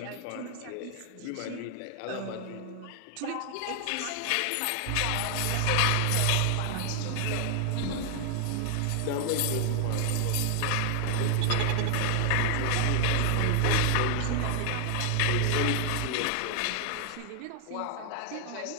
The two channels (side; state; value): both; different; correlation 0.00